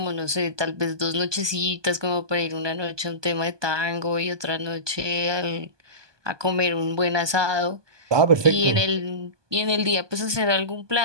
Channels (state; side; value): late; left; 1.2 ms